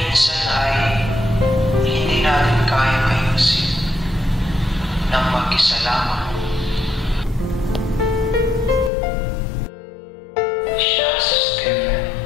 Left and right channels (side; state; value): right; drops out; at 8.9 s